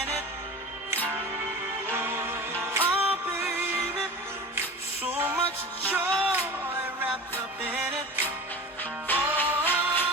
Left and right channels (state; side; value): normal; both; correlation 0.34